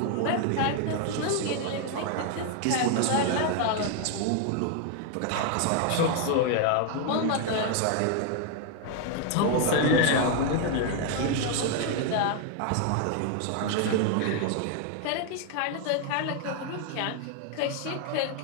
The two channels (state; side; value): different; both; correlation 0.00